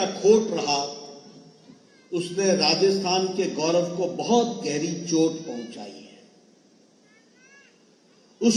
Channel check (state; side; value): identical; both; correlation 1.00